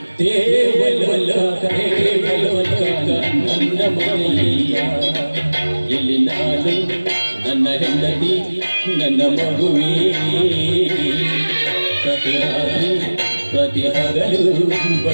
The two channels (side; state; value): both; inverted; correlation -1.00